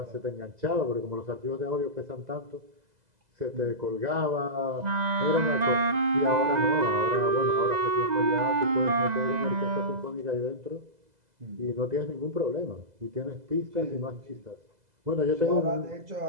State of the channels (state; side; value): late; left; 2.0 ms